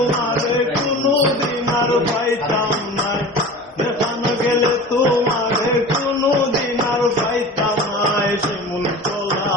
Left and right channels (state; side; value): normal; both; correlation 0.36